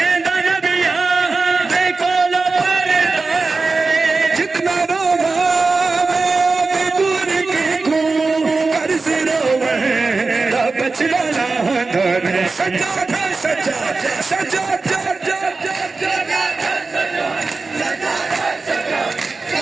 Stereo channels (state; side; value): quieter; left; 3.9 dB